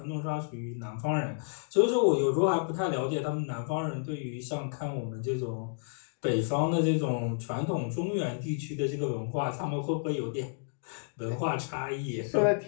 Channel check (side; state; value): right; silent; digital silence